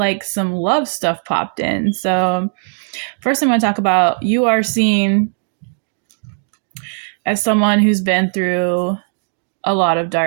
some love stuff popped in. So first I'm going to talk about you are seen as someone who's been through a lot of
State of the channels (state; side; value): silent; left; digital silence